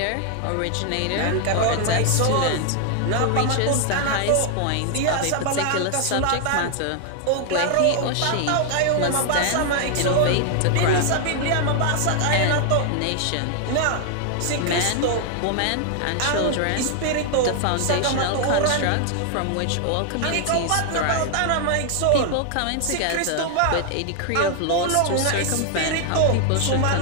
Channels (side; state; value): both; different; correlation 0.00